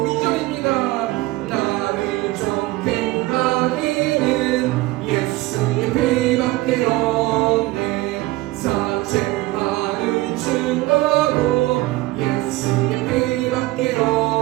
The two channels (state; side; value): quieter; left; 19.1 dB